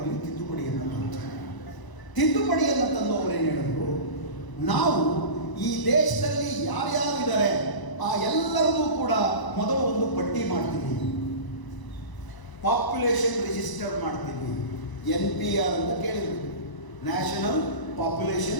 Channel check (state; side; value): late; right; 1.0 ms